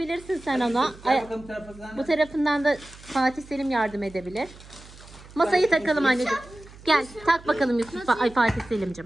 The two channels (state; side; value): noise; right; hum, 20 dB below the sound